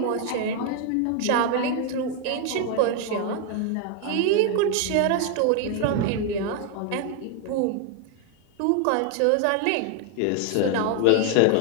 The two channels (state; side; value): different; both; correlation 0.01